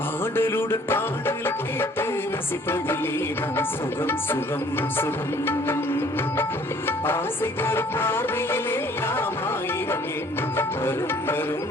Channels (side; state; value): both; normal; correlation 0.57